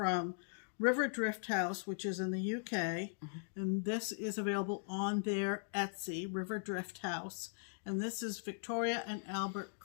Riverdrifthouse, which is in the UK, and this is available on their Etsy, Riverdrifthouse, and this is Victoria and Albert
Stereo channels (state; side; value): silent; right; digital silence